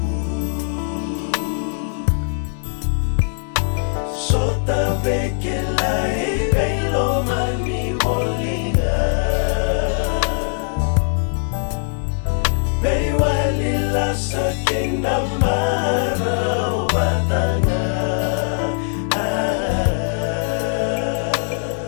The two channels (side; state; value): right; silent; 58 dB below the other